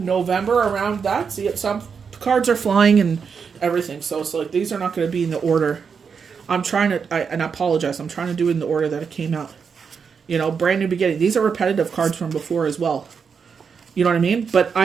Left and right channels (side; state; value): left; quieter; 6.1 dB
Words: around that. See, some cards are flying and everything. So it's like, these are not going to be in the order. I'm trying to, and I apologize, I'm trying to do it in the order that it came out. Brand new beginning. These are repetitive cards from before as well. You know what I mean? But